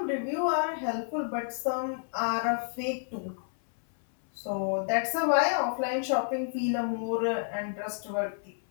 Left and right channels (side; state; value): right; silent; 58 dB below the other